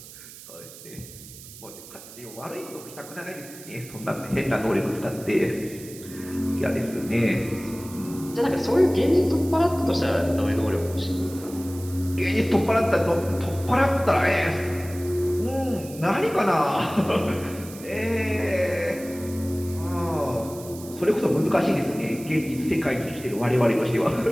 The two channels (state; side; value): noise; right; hiss, 17 dB below the sound